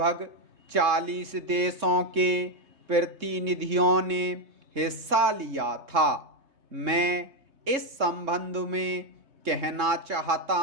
40 देशों के प्रतिनिधियों ने हिस्सा लिया था। मैं इस संबंध में कहना चाहता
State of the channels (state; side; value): late; left; 3.6 ms